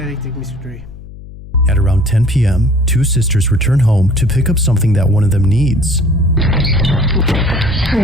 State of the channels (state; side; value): noise; left; hum, 16 dB below the sound